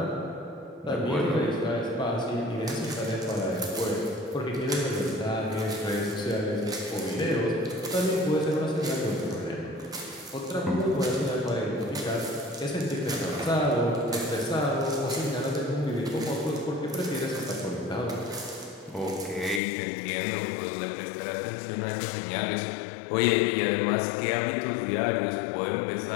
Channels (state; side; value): drops out; right; at 19.6 s